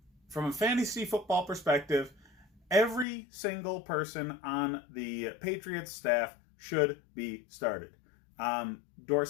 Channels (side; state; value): right; drops out; at 3.1 s